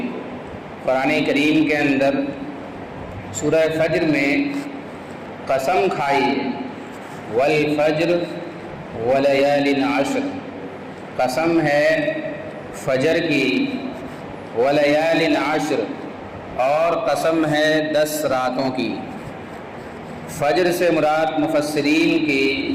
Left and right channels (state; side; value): identical; both; correlation 1.00